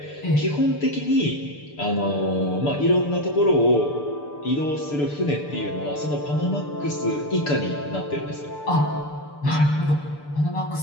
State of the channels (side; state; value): right; late; 6.8 ms